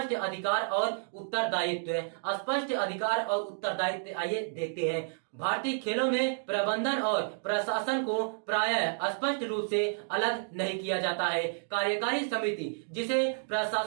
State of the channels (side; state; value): left; silent; digital silence